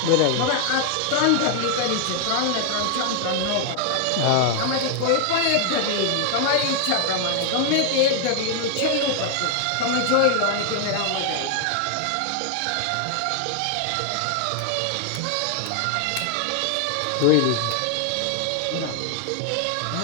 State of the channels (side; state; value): both; different; correlation 0.00